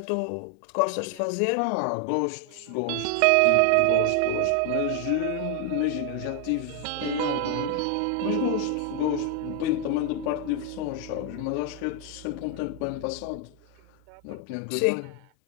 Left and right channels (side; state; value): both; different; correlation 0.00